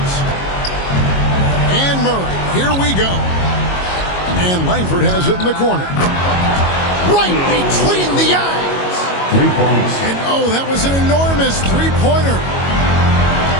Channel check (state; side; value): late; right; 22 ms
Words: And Murray. Here we go. And Langford has it in the corner. Right between the eyes. 3 points. And oh, that was an enormous three-pointer.